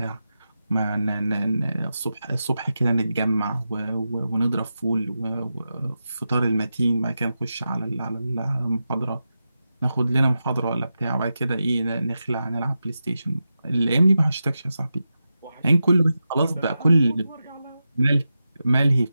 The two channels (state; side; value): inverted; both; correlation -0.90